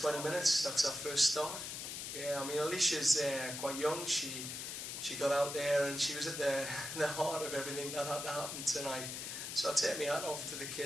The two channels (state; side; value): noise; left; hiss, 6 dB below the sound